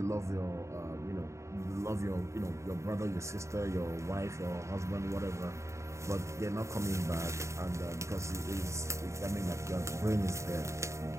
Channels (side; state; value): left; late; 0.14 ms